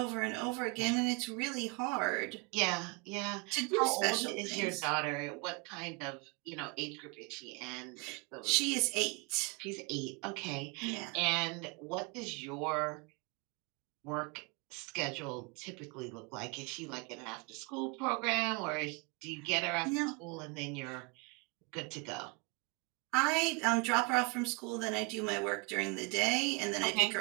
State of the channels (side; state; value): left; quieter; 29.9 dB